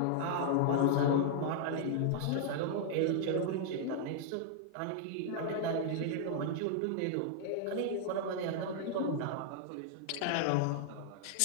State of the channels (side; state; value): both; different; correlation -0.01